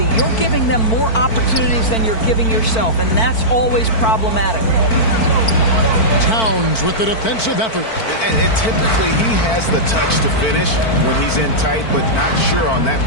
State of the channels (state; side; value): late; right; 4.5 ms